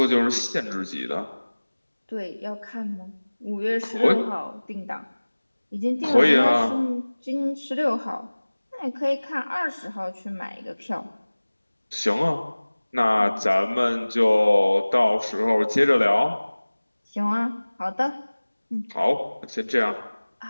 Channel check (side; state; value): both; inverted; correlation -1.00